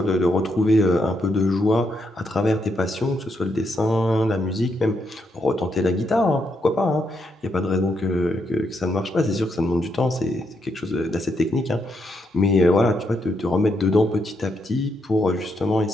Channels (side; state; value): both; normal; correlation 0.79